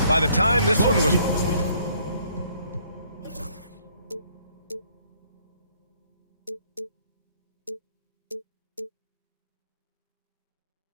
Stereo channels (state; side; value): inverted; both; correlation -0.64